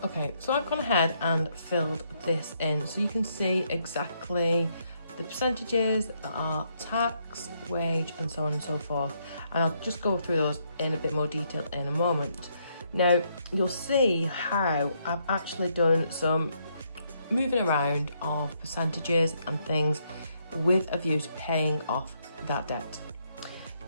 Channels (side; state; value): both; inverted; correlation -0.74